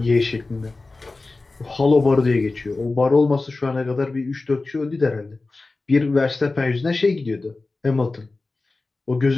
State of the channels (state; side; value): quieter; right; 3.4 dB